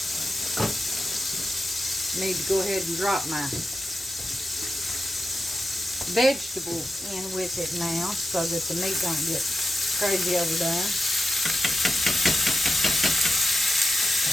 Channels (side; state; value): both; normal; correlation 0.90